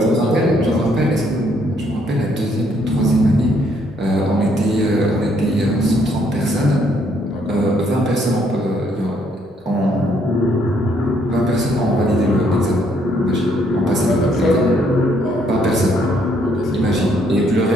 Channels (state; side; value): normal; both; correlation 0.69